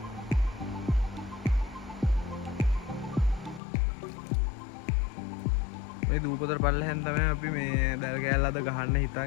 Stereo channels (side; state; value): right; drops out; at 3.6 s